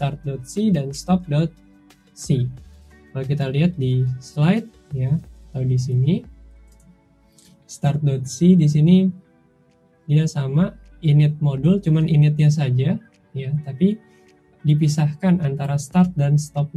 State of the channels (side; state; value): both; identical; correlation 1.00